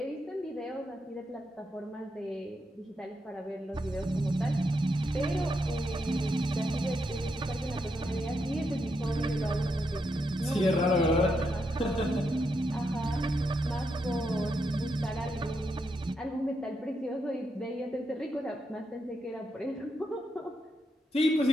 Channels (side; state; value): both; normal; correlation 0.82